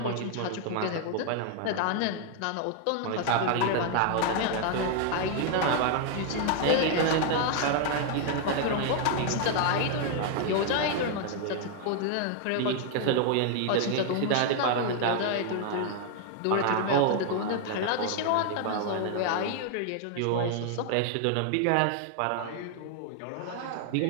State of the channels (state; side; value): different; both; correlation 0.00